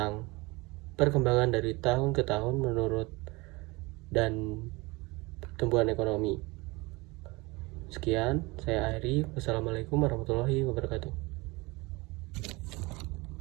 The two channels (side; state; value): left; quieter; 24.1 dB